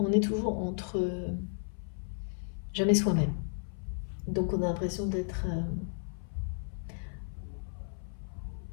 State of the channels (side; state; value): right; silent; 55 dB below the other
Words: est toujours entre jamais soi-même. Donc on a l'impression d'être...